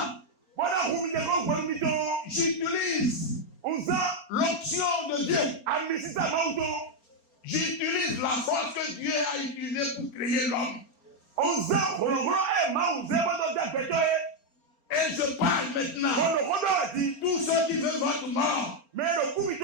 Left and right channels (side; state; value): right; late; 4.3 ms